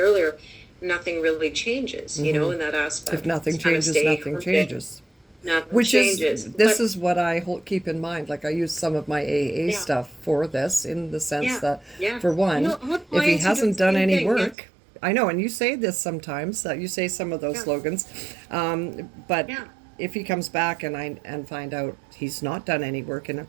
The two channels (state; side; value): drops out; left; at 14.6 s